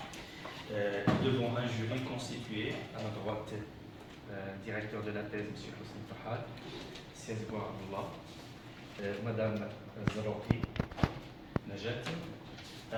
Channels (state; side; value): identical; both; correlation 1.00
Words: Devant un jury constitué, à ma droite, directeur de la thèse, M. Hussein Farhat, Siazboua Abdullah, Madame Zarouki Najat,